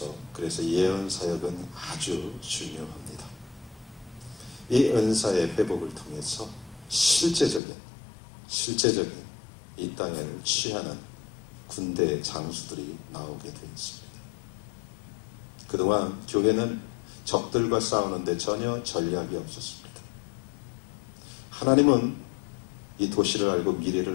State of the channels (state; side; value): drops out; right; at 7.6 s